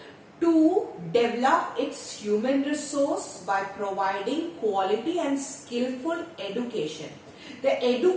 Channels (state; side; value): identical; both; correlation 1.00